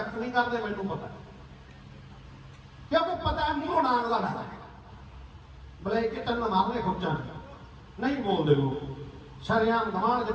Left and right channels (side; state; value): both; identical; correlation 1.00